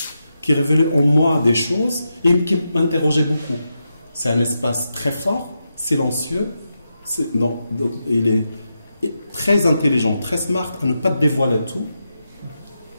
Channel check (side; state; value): both; inverted; correlation -0.87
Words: qui révélait en moi des choses et qui m'interrogeait beaucoup. C'est un espace très fort, silencieux, il est très intelligent, très smart, à ne pas dévoiler tout.